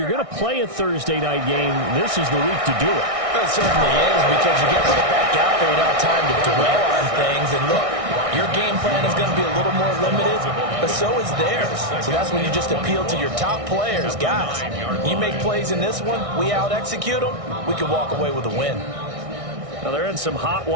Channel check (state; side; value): late; left; 1.6 ms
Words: going to play a Thursday night game, this is the week to do it. It certainly is, because you get right back out there without time to dwell on things. And look, your game plan is going to be a little more limited, but so is theirs. So that's when you just appeal to your top players. Guys, you make plays in this one, we out-execute them, we can walk away with a win. Now they're in some hot